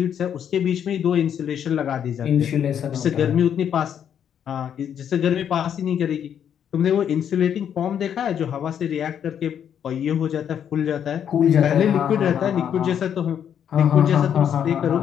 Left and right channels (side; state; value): right; quieter; 8.8 dB